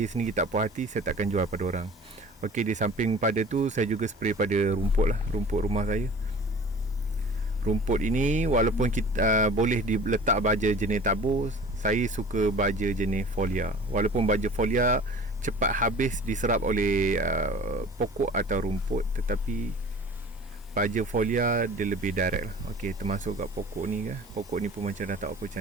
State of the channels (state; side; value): normal; both; correlation 0.43